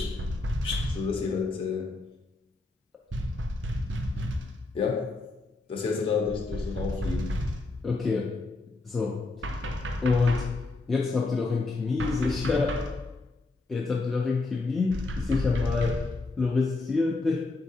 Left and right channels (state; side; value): quieter; right; 3.3 dB